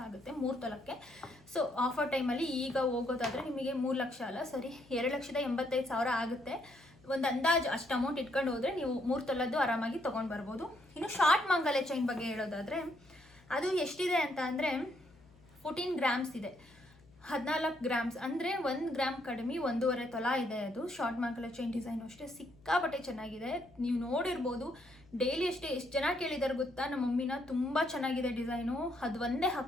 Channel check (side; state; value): left; noise; hum, 27 dB below the sound